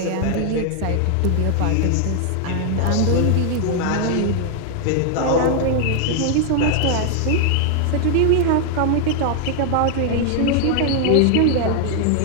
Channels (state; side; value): different; both; correlation 0.00